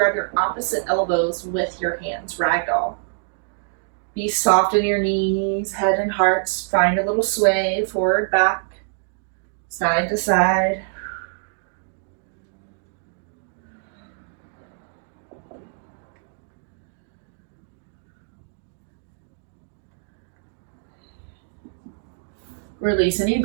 your opposite elbows with your hands, ragdoll. Be soft in your knees, head and heart. Find a little sway, forward, back, side to side. Release any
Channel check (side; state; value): left; silent; digital silence